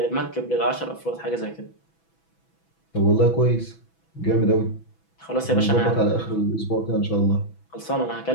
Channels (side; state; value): right; late; 6.1 ms